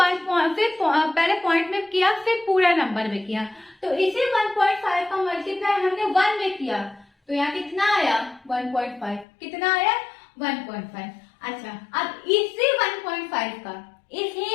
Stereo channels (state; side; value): drops out; right; at 9.2 s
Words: पॉइंट में किया, फिर पूरा नंबर में किया। तो इसी 1.5 का मल्टीप्लाई हमने 1 में किया, तो यहाँ कितना आया 1.5, कितना आया 1.5। अच्छा, अब इसी 1.5 का, इसी